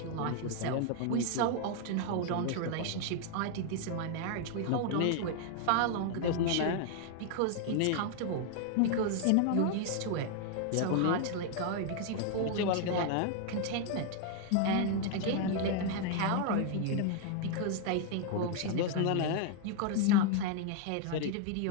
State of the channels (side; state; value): both; different; correlation 0.00